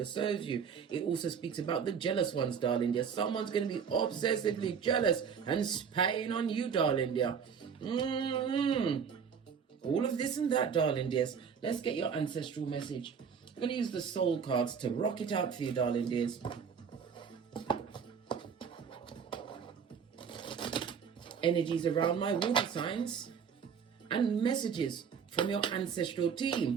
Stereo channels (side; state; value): left; quieter; 6.9 dB